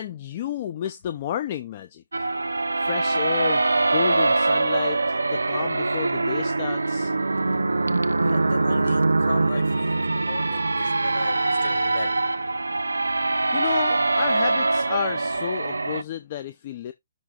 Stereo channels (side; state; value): both; inverted; correlation -0.92